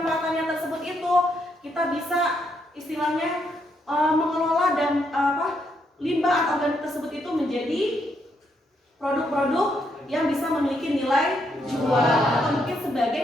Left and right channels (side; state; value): both; normal; correlation 0.76